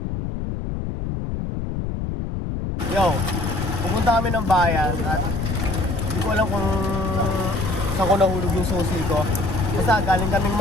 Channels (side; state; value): left; noise; rumble, 3 dB below the sound